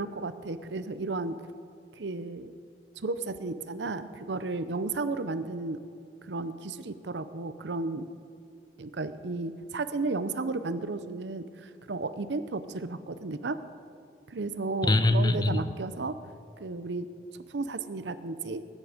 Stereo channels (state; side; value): normal; both; correlation 0.43